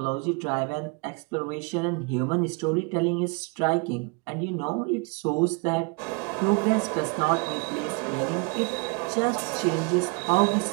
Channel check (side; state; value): left; quieter; 31.8 dB